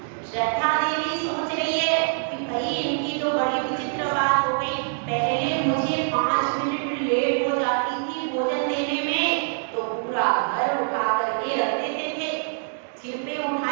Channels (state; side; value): silent; left; digital silence